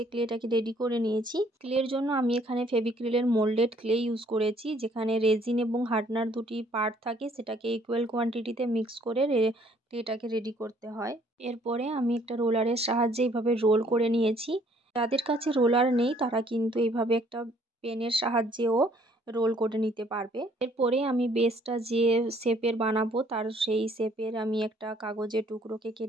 ক্লেটাকে রেডি করে নিয়েছি। ক্লের জন্য আমি এখানে ফেভিক্রিলের মোল্ডেড ক্লে ইউজ করেছি, যেখানে রেজিন এবং হার্ডনার দুটি পার্ট থাকে, সেটাকে ইকুয়াল কোয়ান্টিটিতে মিক্স করে ক্লেটাকে রেডি করতে হয়। এরপরে আমি একটা রোলারের সাহায্যে এইভাবে রোল করে নিয়েছি। যাদের কাছে রোলার নেই তারা কিন্তু এইভাবে একটা পেনের সাহায্যেও রোল করে নিতে পারবে। এরপরে আমি বেসটা যে শেপের বানাবো তার সেই শেপের আমি একটা কাগজের টুকরোকে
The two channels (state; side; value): normal; both; correlation 0.63